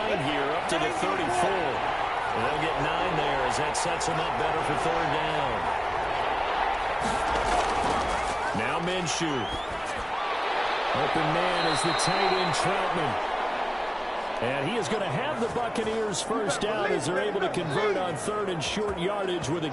here up to the 34. And they'll get 9 there as that sets him up better for 3rd down. Now Minshew. Open man is the tight end Troutman. And he is going to have the Buccaneers first down as they're able to convert on 3rd and short yardage with a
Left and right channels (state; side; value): identical; both; correlation 1.00